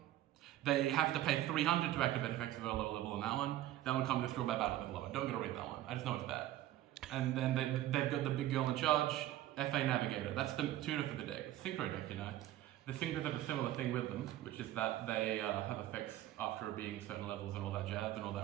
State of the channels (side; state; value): left; quieter; 14.0 dB